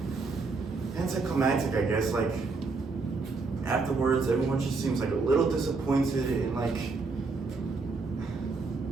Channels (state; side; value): quieter; left; 4.1 dB